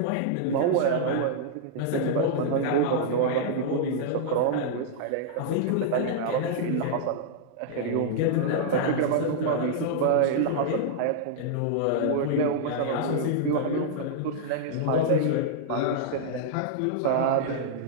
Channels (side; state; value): both; different; correlation -0.01